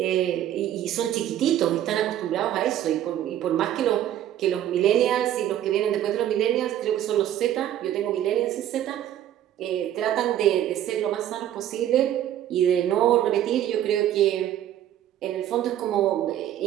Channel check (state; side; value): quieter; left; 11.6 dB